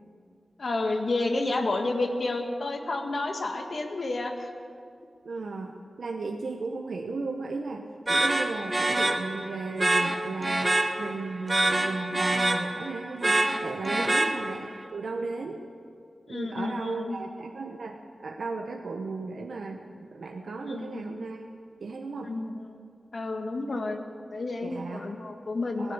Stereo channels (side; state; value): both; normal; correlation 0.94